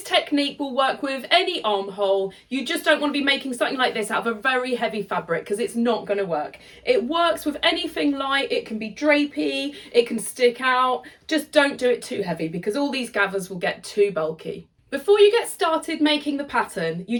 technique will work with any armhole. You just don't want to be making something like this out of a very heavy fabric because it's not going to work. It works with anything light. It can be drapey, it can stick out. Just don't do it too heavy because all these gathers will get too bulky. Before you get started making the pattern, you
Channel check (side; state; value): both; identical; correlation 1.00